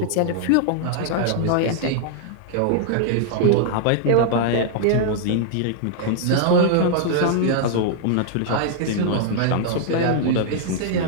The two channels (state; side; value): different; both; correlation -0.01